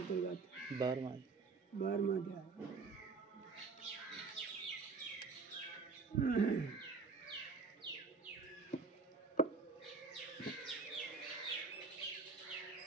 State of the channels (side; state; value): left; quieter; 4.7 dB